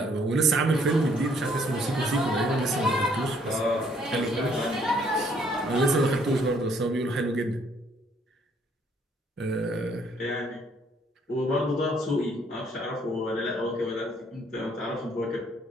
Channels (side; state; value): both; normal; correlation 0.64